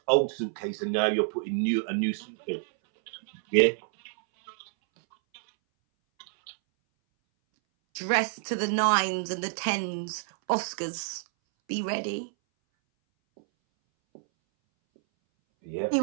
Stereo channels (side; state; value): left; silent; 59 dB below the other